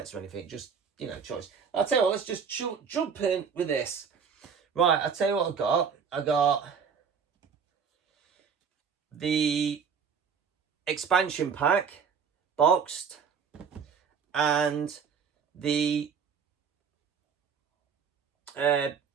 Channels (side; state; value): left; quieter; 6.5 dB